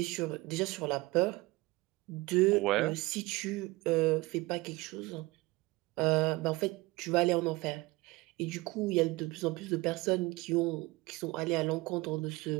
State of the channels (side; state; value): left; quieter; 21.8 dB